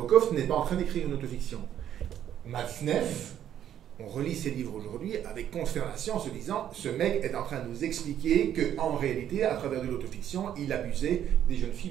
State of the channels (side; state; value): left; quieter; 10.4 dB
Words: n'est pas en train d'écrire une autofiction. Matzneff, on relit ses livres aujourd'hui avec consternation en se disant ce mec est en train de nous expliquer qu'en réalité, à travers de l'autofiction, il abusait des jeunes